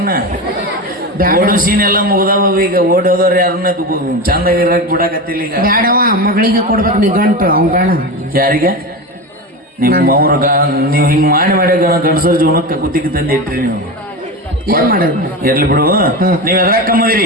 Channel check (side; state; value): both; normal; correlation 0.22